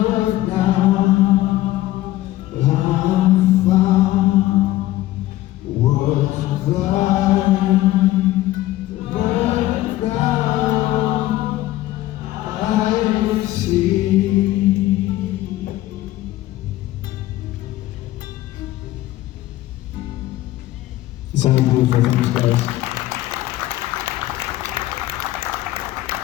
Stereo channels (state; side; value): quieter; right; 15.8 dB